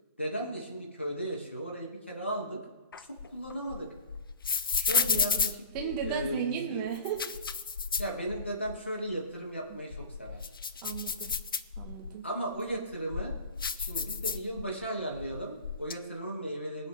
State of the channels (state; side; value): inverted; both; correlation -0.36